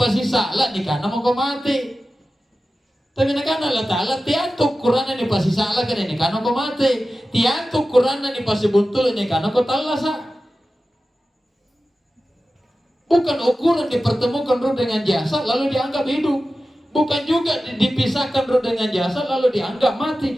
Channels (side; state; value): both; normal; correlation 0.94